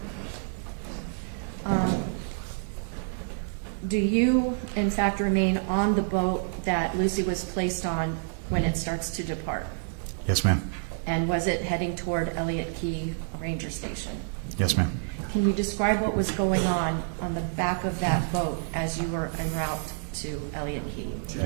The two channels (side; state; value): left; silent; digital silence